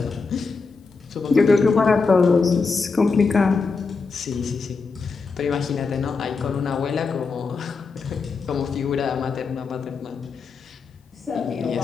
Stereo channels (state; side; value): quieter; right; 4.6 dB